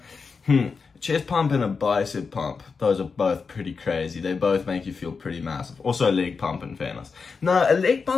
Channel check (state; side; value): quieter; right; 5.0 dB